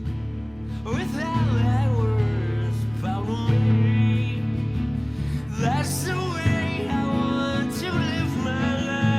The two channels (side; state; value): right; noise; hum, 26 dB below the sound